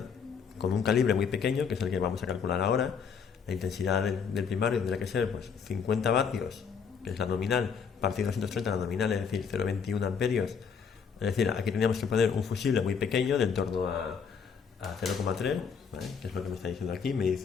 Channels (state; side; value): quieter; right; 6.4 dB